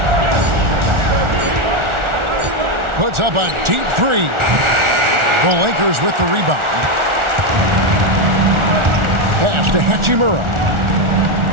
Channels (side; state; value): left; late; 1.4 ms